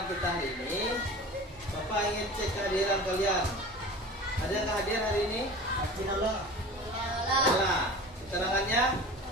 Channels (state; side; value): normal; both; correlation 0.37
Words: kita hari ini, Bapak ingin cek kehadiran kalian. Ada yang hadir hari ini? Alhamdulillah. Nah, keterangannya?